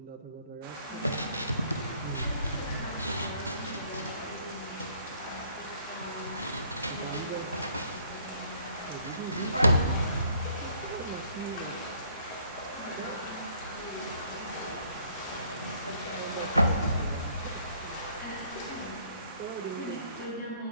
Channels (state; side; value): inverted; both; correlation -0.61